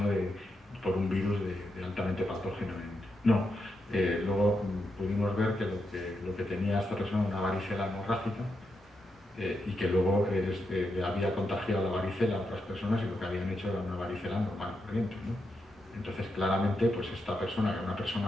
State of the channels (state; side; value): normal; both; correlation 0.84